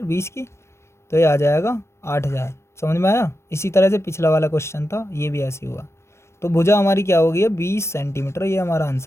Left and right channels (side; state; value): right; late; 0.13 ms